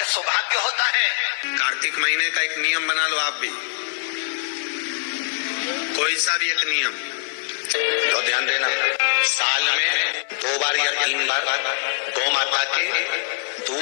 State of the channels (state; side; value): silent; right; 64 dB below the other